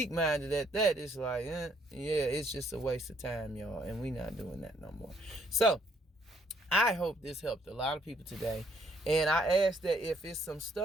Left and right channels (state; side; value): normal; both; correlation 0.67